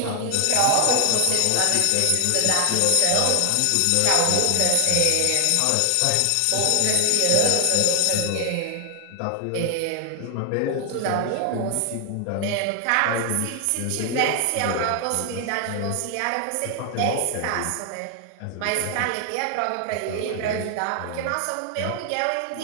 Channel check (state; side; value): different; both; correlation 0.00